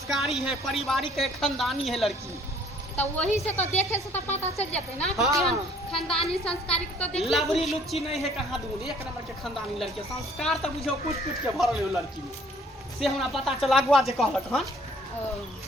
है पारिवारिक है खानदानी है लड़की। तो वही से तो देखे से तो पता चल जाते ना कि हाँ। केहन खानदानी संस्कारी तो देख लवरी लुच्ची नहीं है कहाँ दूर एक नंबर के खानदानी लड़की संस्कार तो बुझो कुछ कुछ के भरल है लड़की में से हमरा पता चला अगुआ जे कहलक हन।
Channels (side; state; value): both; normal; correlation 0.58